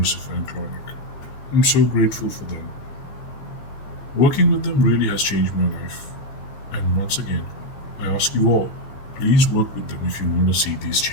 and Clauneck. I'm so grateful for them. Working with them really has changed my life. And once again, I ask you all, please work with them if you want to see these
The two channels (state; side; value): late; right; 15 ms